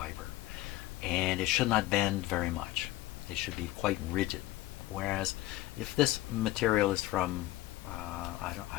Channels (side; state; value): right; quieter; 16.9 dB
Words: and it should not bend very much. It should be quite rigid. Whereas, if this material is from, I